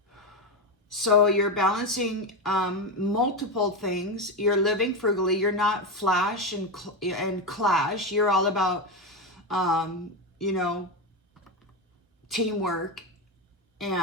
So you're balancing multiple things. You're living frugally. You're not flash and clash. You're all about, you know, teamwork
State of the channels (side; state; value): both; normal; correlation 0.13